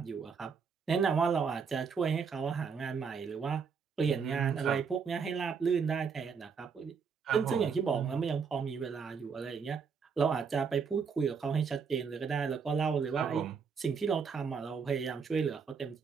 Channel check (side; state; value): left; quieter; 5.9 dB